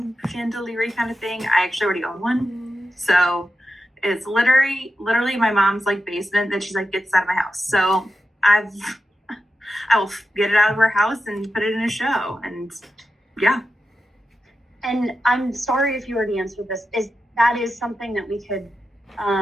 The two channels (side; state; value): both; normal; correlation 0.90